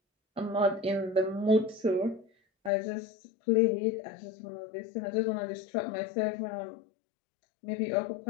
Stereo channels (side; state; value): right; drops out; at 2.7 s